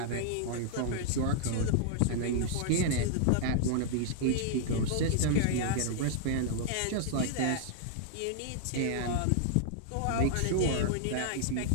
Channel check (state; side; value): different; both; correlation -0.01